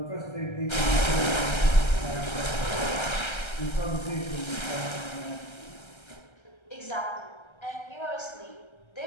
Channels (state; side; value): late; right; 1.3 ms